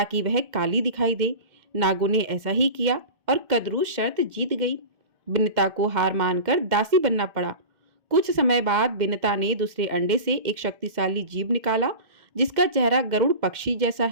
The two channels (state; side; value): late; left; 2.1 ms